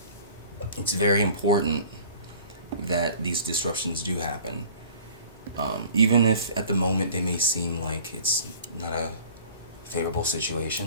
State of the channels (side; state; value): both; inverted; correlation -0.47